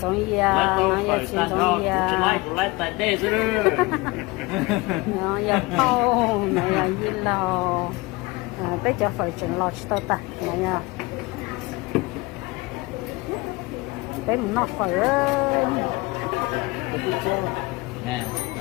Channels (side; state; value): right; quieter; 23.4 dB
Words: giống như nó giờ chỉ giống như nó giờ khâu nó giờ gì lo bây giờ phải chuyển lo cho ta nha bé mình nọc phải